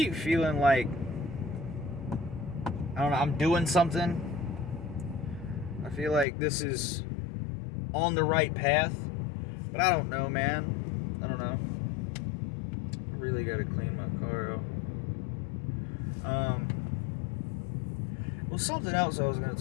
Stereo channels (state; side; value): drops out; right; at 6.2 s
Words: feeling like I don't know, I'm doing something. I feel like this is on the right path, but I don't know, man. I don't know. I really gotta clean my car out. Well, something else I was gonna